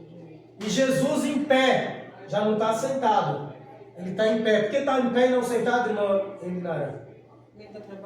e Jesus em pé. Já não está sentado, ele está em pé. Por que está em pé e não sentado, irmão Eminara? Ele está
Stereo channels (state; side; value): identical; both; correlation 1.00